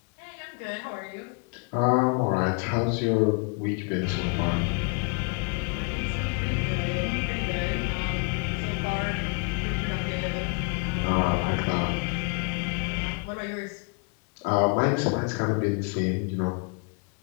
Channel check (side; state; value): right; quieter; 36.9 dB